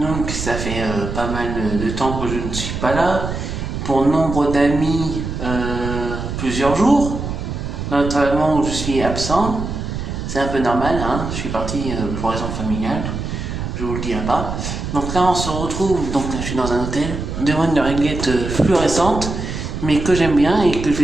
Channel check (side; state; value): right; noise; rumble, 5 dB below the sound